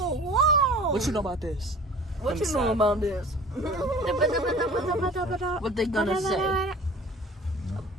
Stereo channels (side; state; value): both; normal; correlation 0.44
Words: What you know about this? What you know about this? What they gonna say?